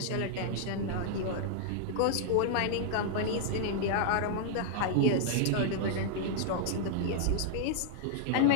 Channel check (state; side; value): different; both; correlation -0.01